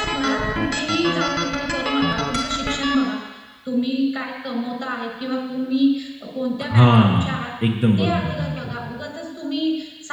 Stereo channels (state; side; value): identical; both; correlation 1.00